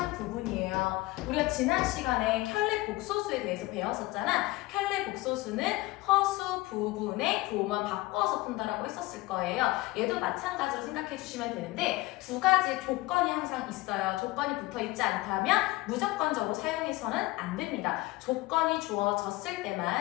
부분이에요. 우리가 지난 시간에 켤레 복소수에 대해서 배웠었잖아. 켤레 복소수는 허수 부분의 부호만 바꿔서 푼다라고 했었을 거예요. 얘도 마찬가지로 생각해 주시면 되는데 두 가지 조건이 항상 있어요. 조건이 붙어 있지 않다면 무조건적으로 사용해서는 안 됩니다. 조건이 주어졌을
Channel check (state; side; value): quieter; right; 20.1 dB